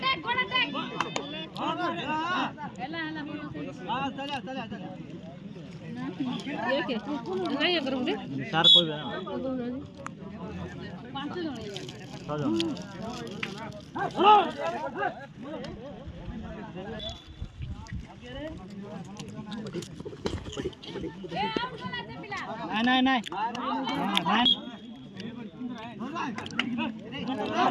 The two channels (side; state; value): both; identical; correlation 1.00